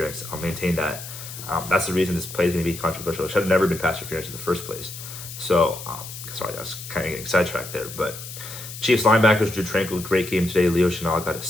I'll maintain that. That's the reason this play is going to be controversial. It should have never been pass interference in the first place. So, sorry, I was kind of getting sidetracked there. But Chiefs linebackers, Drew Tranquil, great game today. Leo Chenal got a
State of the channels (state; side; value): noise; left; hiss, 11 dB below the sound